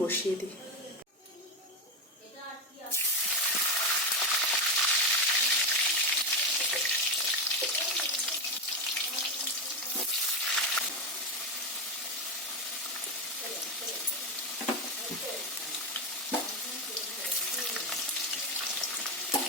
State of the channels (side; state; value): both; normal; correlation 0.13